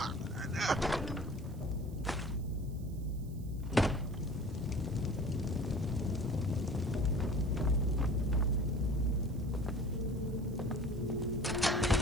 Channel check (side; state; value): right; noise; hiss, 25 dB below the sound